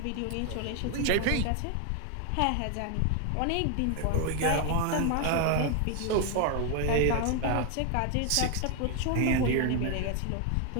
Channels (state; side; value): different; both; correlation 0.01